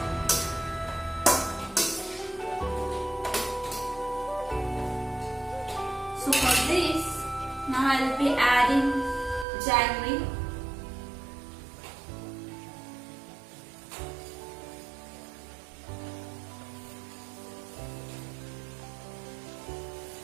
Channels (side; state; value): left; drops out; at 9.5 s